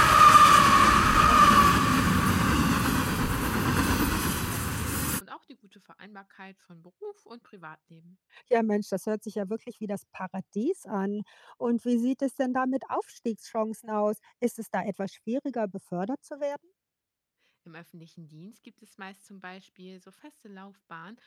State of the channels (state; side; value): identical; both; correlation 1.00